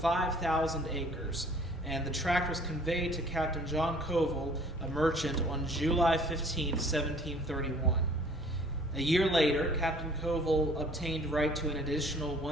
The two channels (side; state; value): both; normal; correlation 0.53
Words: acres, and the tract was conveyed to Captain John Covell, a merchant, on July 15, 1731. A year later, Captain Covell obtained right to an additional